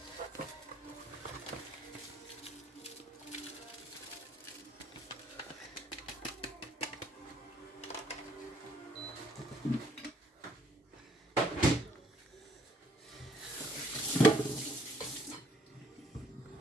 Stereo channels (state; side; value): normal; both; correlation 0.65